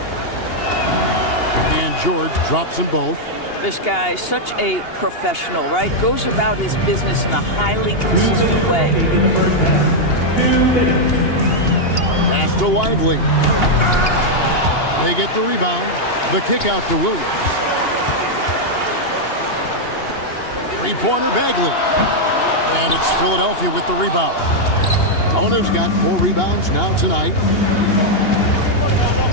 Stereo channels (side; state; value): right; late; 2.8 ms